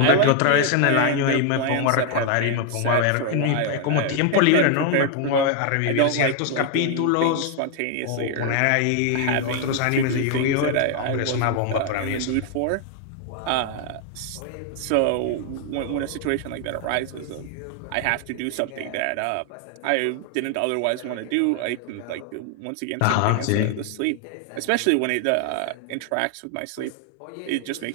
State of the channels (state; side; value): different; both; correlation 0.00